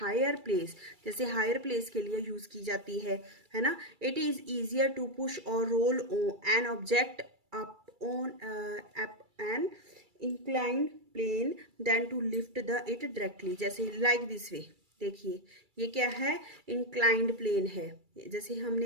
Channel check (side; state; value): left; late; 2.3 ms